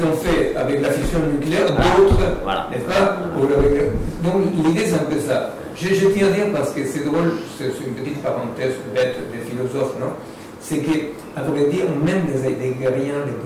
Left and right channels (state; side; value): identical; both; correlation 1.00